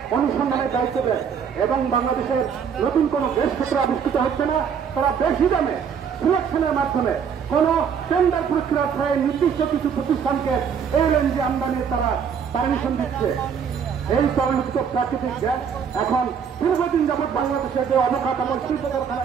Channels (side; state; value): left; quieter; 7.1 dB